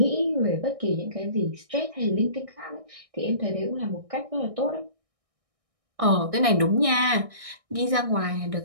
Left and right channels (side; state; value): left; late; 1.6 ms